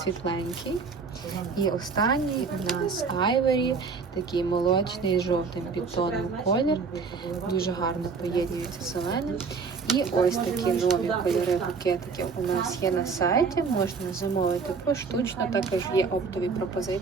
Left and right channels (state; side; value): quieter; left; 5.0 dB